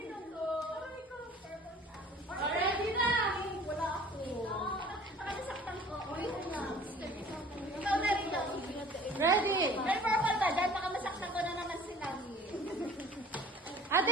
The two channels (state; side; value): normal; both; correlation 0.48